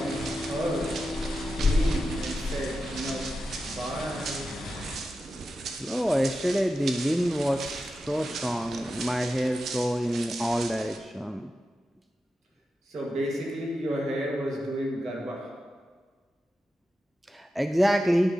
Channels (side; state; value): both; normal; correlation 0.91